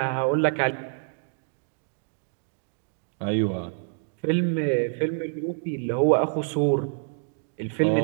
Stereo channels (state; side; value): silent; left; digital silence